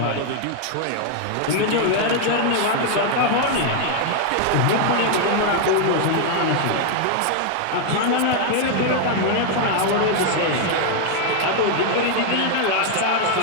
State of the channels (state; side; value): different; both; correlation 0.00